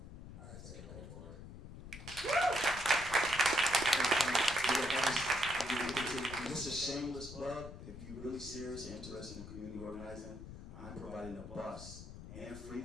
I say go for it. Just a shameless plug, if you're really serious and interested in community organizing, I'm providing a bus and free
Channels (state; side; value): noise; left; rumble, 12 dB below the sound